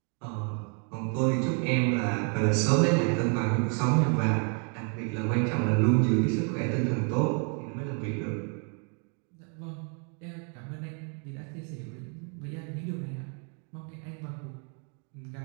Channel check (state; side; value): quieter; left; 39.9 dB